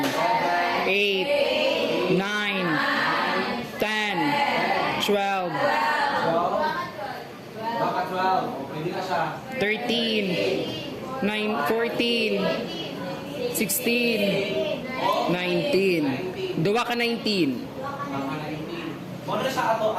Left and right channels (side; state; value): both; identical; correlation 1.00